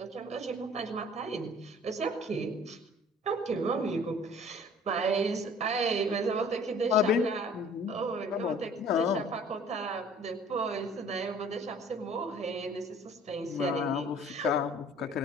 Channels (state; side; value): normal; both; correlation 0.51